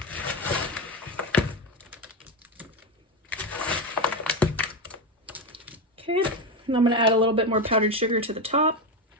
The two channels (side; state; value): both; normal; correlation 0.14